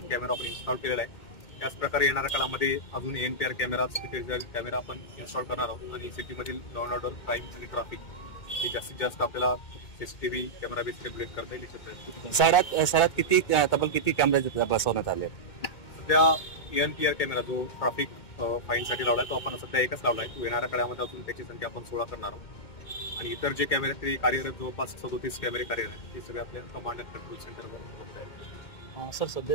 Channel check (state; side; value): late; right; 2.1 ms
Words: कॅमेरा आपण इन्स्टॉल केलेला आहे। त्याच प्रकारे येणाऱ्या काळामध्ये अजून ENPR कॅमेरा आपण इन्स्टॉल करणार आहोत आणि सिटीमधील लॉ अँड ऑर्डर, क्राईम आणि ट्रॅफिक हे जास्तीत जास्त आपल्याला CCTV कॅमेरा बेस रेग्युलेट करता येईल। शहरात तब्बल किती कॅमेरे बसवण्यात आले? सध्या ENPR कॅमेरा जो ट्रॅफिक फाईनसाठी लावलाय तो आपण सध्या एकच लावलाय। तो येणाऱ्या काळामध्ये अजून त्याची संख्या आपण 16 करणार आहोत आणि इतर जे कॅमेरे ते कार्यरत जवळपास 37 कॅमेरे कार्यरत आहेत ते सगळे आपल्या कमांड अँड कंट्रोल सेंटरवर उपलब्ध आहेत। सर,